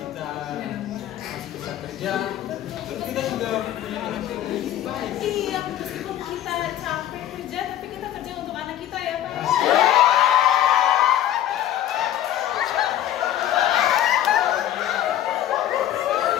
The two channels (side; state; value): right; quieter; 12.1 dB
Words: masih bisa kerja, terus kita juga punya anak yang baik. Iya, meskipun kita capek kerja, tapi kita kerja untuk anak kita ya Pak.